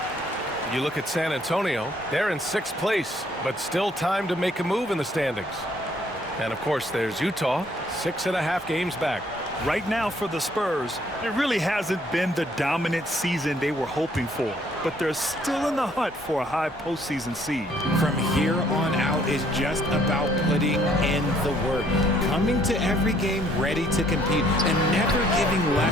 You look at San Antonio, they're in 6th place, but still time to make a move in the standings. And of course, there's Utah, 6.5 games back. Right now for the Spurs, it really hasn't been the dominant season they were hoping for, but they're still in the hunt for a high postseason seed. From here on out is just about putting in the work, coming to every game ready to compete, and never giving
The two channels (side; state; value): both; normal; correlation 0.64